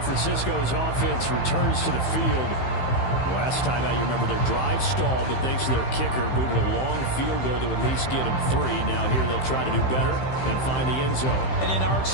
Francisco's offense returns to the field. Last time out, you remember their drive stalled, but thanks to their kicker, booted a long field goal to at least least get them 3. Now here they'll try to do better and find the end zone. And in our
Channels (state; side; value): late; right; 15 ms